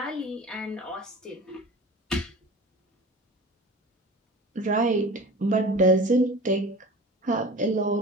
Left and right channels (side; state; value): both; normal; correlation 0.37